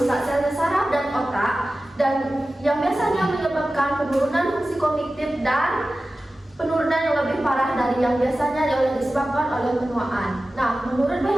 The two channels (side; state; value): both; normal; correlation 0.95